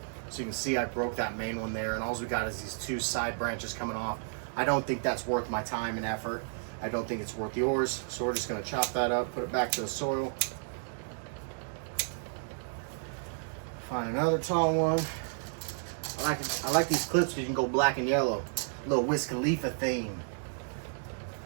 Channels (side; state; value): left; silent; digital silence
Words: So you can see I broke that main one there, and all we got is these two side branches coming off. I don't think that's worth my time and effort. I don't think it's worth yours. So we're just gonna chop that up, put it back to the soil. Find another tall one. I like these clips because you can go black and yellow. A little Wiz Khalifa theme.